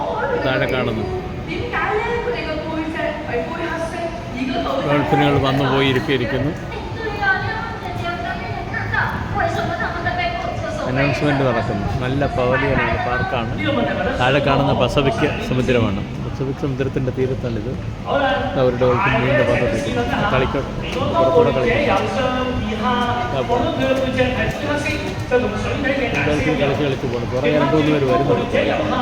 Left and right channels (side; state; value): both; identical; correlation 1.00